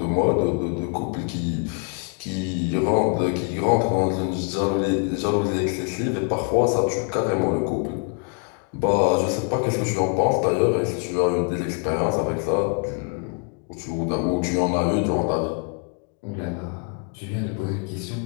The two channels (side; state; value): right; quieter; 38.8 dB